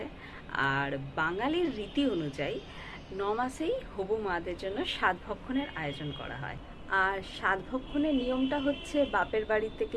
আর বাঙালির রীতি অনুযায়ী 9 মাসেই হবু মাদের জন্য সাধভক্ষণের আয়োজন করা হয়। আর সাধভক্ষণের নিয়মটা হচ্ছে বাপের বাড়ি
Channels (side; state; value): both; identical; correlation 1.00